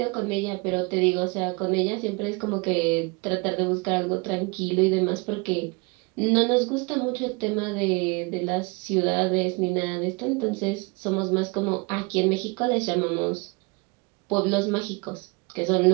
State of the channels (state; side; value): quieter; left; 29.1 dB